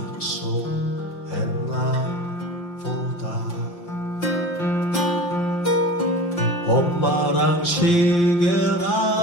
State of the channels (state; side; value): late; right; 6.0 ms